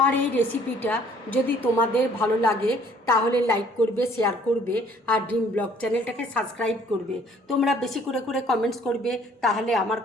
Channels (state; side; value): normal; both; correlation 0.58